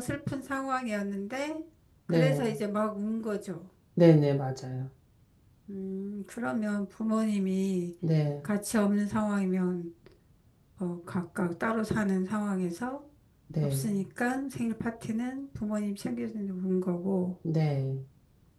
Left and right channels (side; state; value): both; identical; correlation 1.00